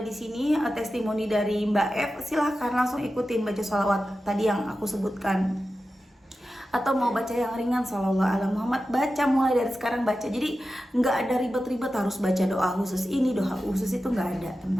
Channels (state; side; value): normal; both; correlation 0.93